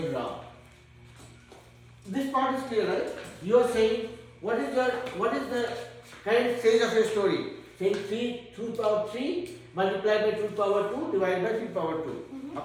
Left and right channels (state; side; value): identical; both; correlation 1.00